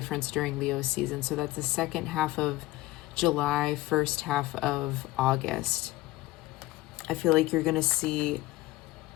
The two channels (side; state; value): right; quieter; 18.3 dB